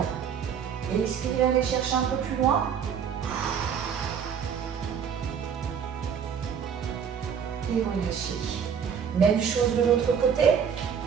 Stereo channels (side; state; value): left; quieter; 7.4 dB